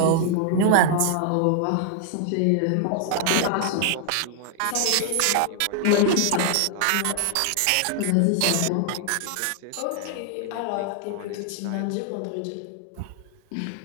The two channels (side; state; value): both; different; correlation 0.00